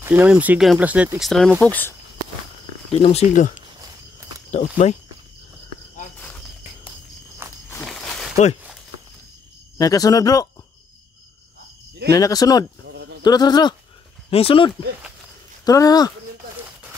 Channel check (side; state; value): right; quieter; 4.5 dB